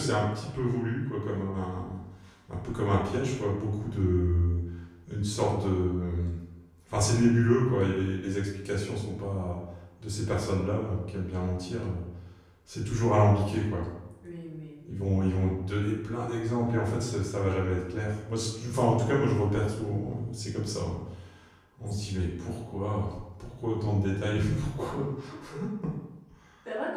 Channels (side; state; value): both; identical; correlation 1.00